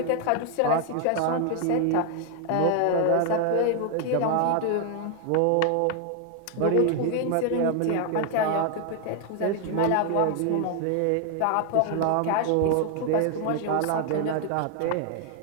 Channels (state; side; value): different; both; correlation 0.00